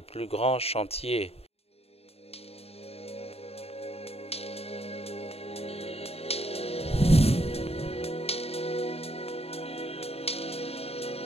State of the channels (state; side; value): late; right; 0.29 ms